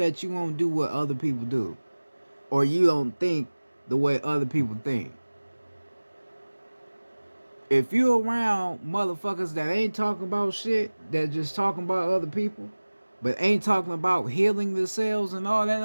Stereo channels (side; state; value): both; inverted; correlation -1.00